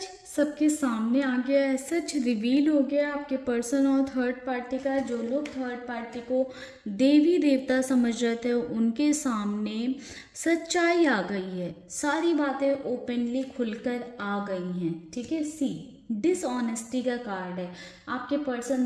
सबके सामने आ गया है, सच रिवील हो गया आपके पर्सन और थर्ड पार्टी का। जो लोग थर्ड पार्टी को देवी देवता समझ रहे थे उनके सामने सच्चाई आ गई है, सारी बातें ओपनली खुलकर आ गई हैं। ठीक है, डिसऑनेस्टी का कार्ड है। आपके पर्सन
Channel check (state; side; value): identical; both; correlation 1.00